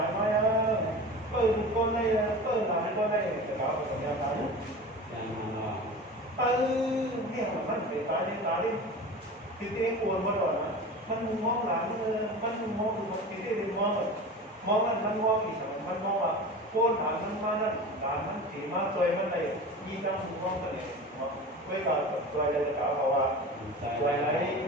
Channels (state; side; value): normal; both; correlation 0.33